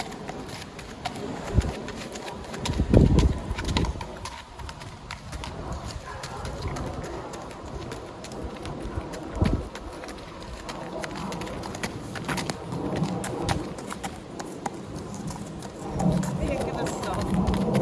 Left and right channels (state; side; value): identical; both; correlation 1.00